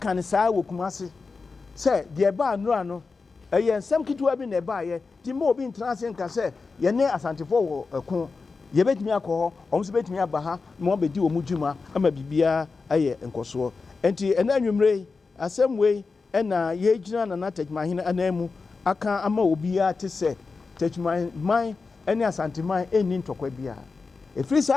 ne saa wo kumase se de ba anura no eye nsem kitwa bi na ba ye ti mo obi ntrase nka se ye ne asantefo wo ekun yɛbɛtumi akɔ hɔ ɔmo so bɛtumi aba ha na wɔn bɛdi wɔn dwuma ama biribiara ayɛ nkɔsoɔ nti ɛna anwummere asɛm wei ɛna yɛgyina Nana Techiman hene anan mu aka ama obiara te sɛ Techiman man ɛne asanteman ɛnni ntɔkwa biara ɛfiri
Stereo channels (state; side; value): quieter; right; 4.4 dB